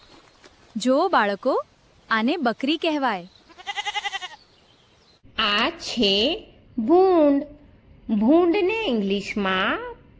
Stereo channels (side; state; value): both; identical; correlation 1.00